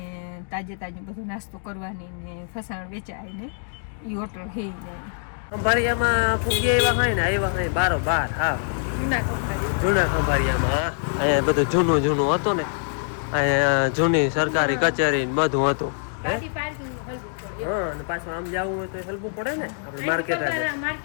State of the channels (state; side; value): silent; right; digital silence